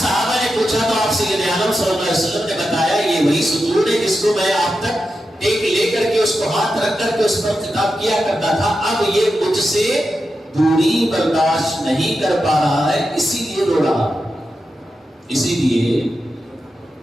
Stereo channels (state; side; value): normal; both; correlation 0.89